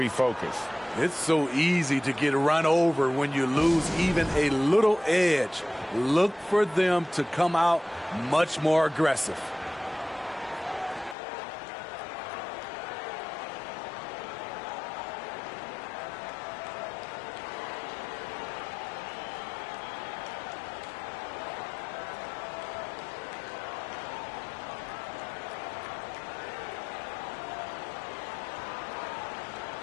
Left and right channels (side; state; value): right; drops out; at 11.2 s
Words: It's so easy to get run over when you lose even a little edge. Look for them to come out much more aggressive.